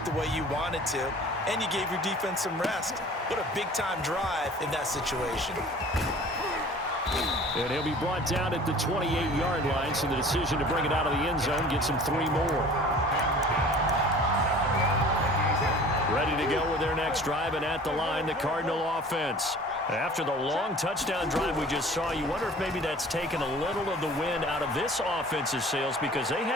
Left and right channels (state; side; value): normal; both; correlation 0.46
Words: the way you wanted to, and you gave your defense some rest. What a big-time drive in that situation. And he'll be brought down at the 28-yard line, so the decision to bring it out of the end zone gets him 3 more. Ready to go with their next drive, and at the line, the Cardinal offense. After the long touchdown drive we just saw, you wonder if maybe that's taken a little of the wind out of this offense's sails, because they